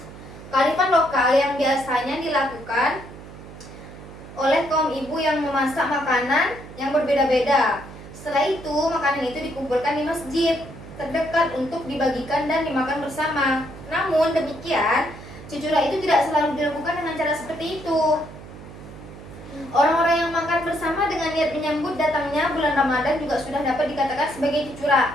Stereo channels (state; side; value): noise; right; hum, 16 dB below the sound